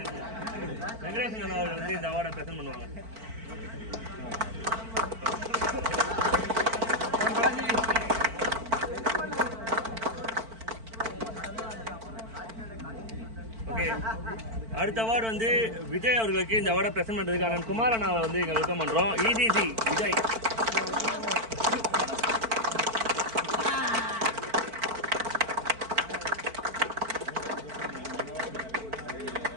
வெங்கடேசன் அண்ணா அவர்கள் வந்து இந்த அவார்டை பிரசன்ட் பண்ணுவாங்க. ஓகே, அடுத்த அவார்டு வந்து விஜய் அவர்களுக்கு இந்த அவார்டை பிரசன்ட் பண்ணுறதுக்கான குமார் அண்ணாவை வந்து இங்கே வெல்கம் பண்ணுறோம். இசிசி விஜய்.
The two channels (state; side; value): late; left; 4.5 ms